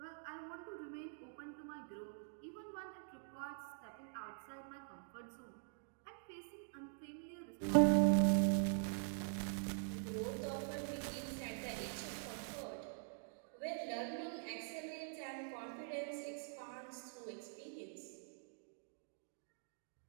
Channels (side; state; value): left; silent; digital silence